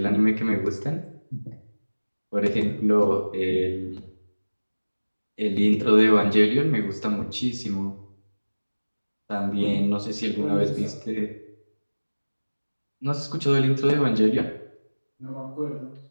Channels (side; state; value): both; inverted; correlation -1.00